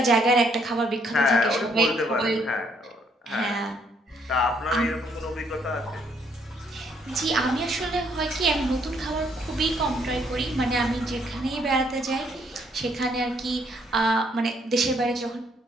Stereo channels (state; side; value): normal; both; correlation 0.69